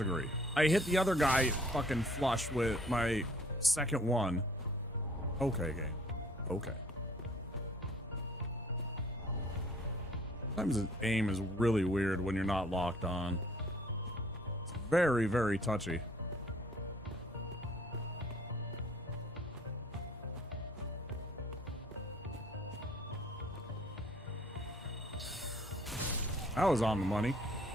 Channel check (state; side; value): normal; both; correlation 0.57